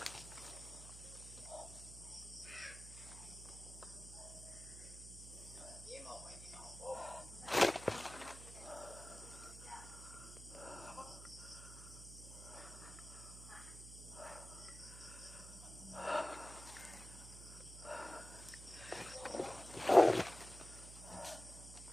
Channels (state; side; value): noise; right; hum, 13 dB below the sound